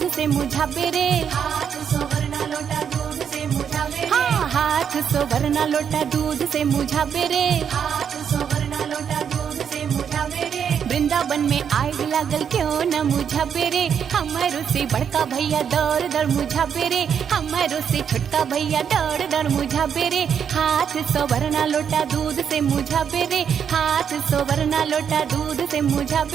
से मुझावे रे, हाथ सोवरना लोटा दूध से मुझावे रे, हाँ हाथ सोवरना लोटा दूध से मुझावे रे। हाथ सोवरना लोटा दूध से मुझावे रे। वृंदावन में आग लागल क्यों न मुझा पेरे, हमारो से बड़का भैया दौड़ दौड़ मुझा पेरे, हमारो से छोटका भैया दौड़ दौड़ मुझा पेरे। हाथ सोवरना लोटा दूध से मुझा पेरे, हाथ सोवरना लोटा दूध से मुझा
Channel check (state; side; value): quieter; left; 7.7 dB